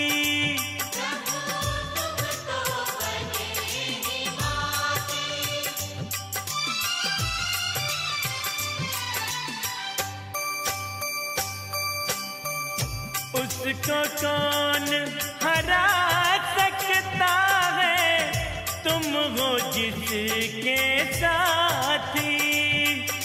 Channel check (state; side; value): identical; both; correlation 1.00